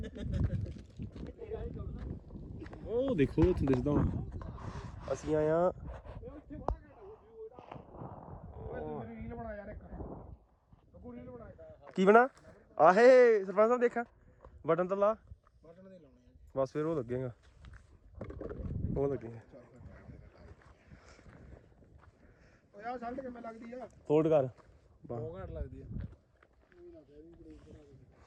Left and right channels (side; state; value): both; identical; correlation 1.00